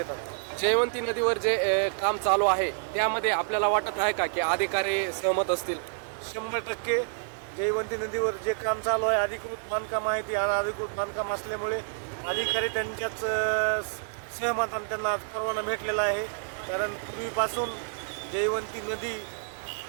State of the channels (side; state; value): left; silent; digital silence